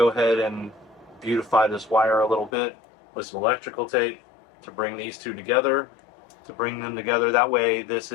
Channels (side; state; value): right; drops out; at 2.5 s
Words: ahead and beautify this wire a little bit with some electrical tape to bring these two together. That way this